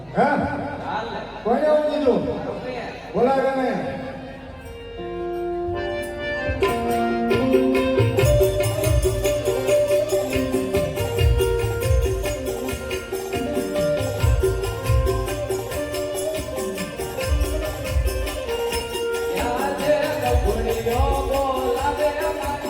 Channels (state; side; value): identical; both; correlation 1.00